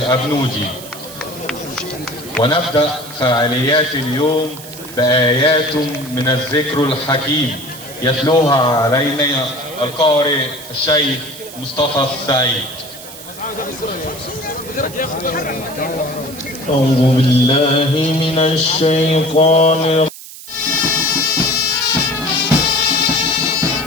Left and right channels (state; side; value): noise; right; hiss, 15 dB below the sound